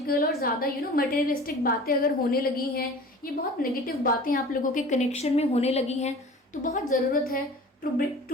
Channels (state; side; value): normal; both; correlation 0.41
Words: और ज़्यादा मटेरियलिस्टिक बातें अगर होने लगी हैं, ये बहुत नेगेटिव बातें आप लोगों के कनेक्शन में होने लगी हैं, तो बहुत ज़रूरत है